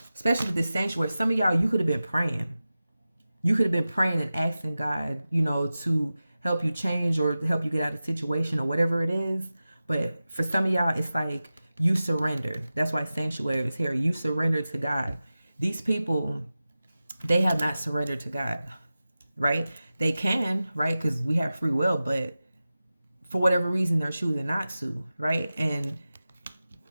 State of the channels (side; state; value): both; inverted; correlation -0.95